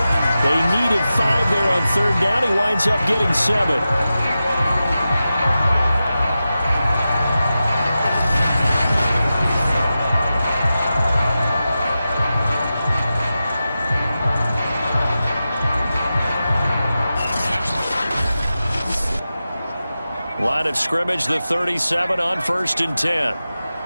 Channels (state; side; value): inverted; both; correlation -0.92